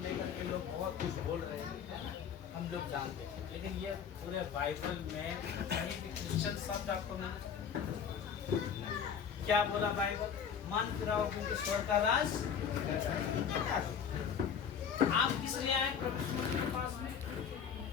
लेकर के लोग बहुत कुछ बोल रहे हैं, हम लोग जानते हैं, लेकिन ये पूरे बाइबल में कहीं भी क्रिश्चियन शब्द आपको मिले? क्या बोला बाइबल? मन फिराओ क्योंकि स्वर्ग का राज। आप किस लिए आए प्रभु के पास में?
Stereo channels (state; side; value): quieter; right; 7.4 dB